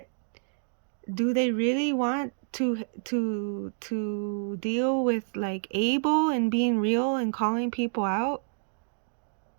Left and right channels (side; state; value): left; silent; digital silence